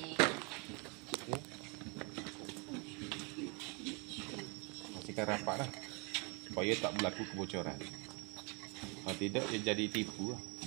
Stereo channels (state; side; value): quieter; left; 31.9 dB